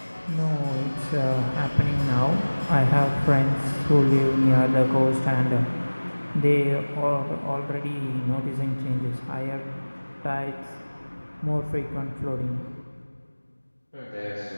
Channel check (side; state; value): both; inverted; correlation -1.00